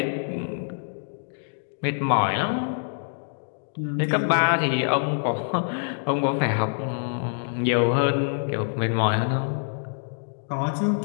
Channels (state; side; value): silent; right; digital silence